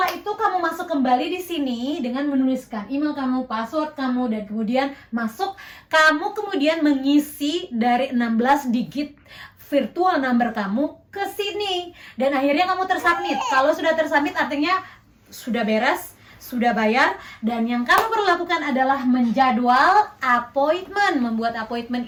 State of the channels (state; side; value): identical; both; correlation 1.00